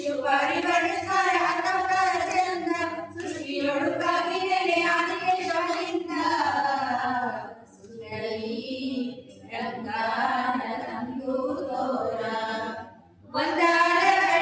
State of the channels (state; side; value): identical; both; correlation 1.00